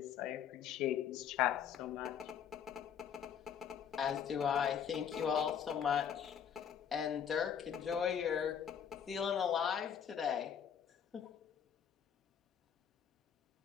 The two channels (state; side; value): quieter; right; 8.2 dB